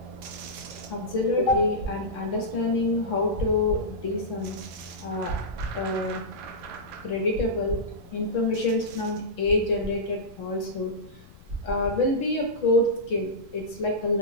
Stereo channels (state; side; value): noise; left; rumble, 22 dB below the sound